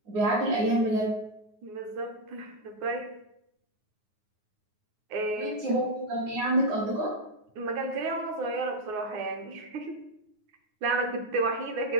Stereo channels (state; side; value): late; left; 9.5 ms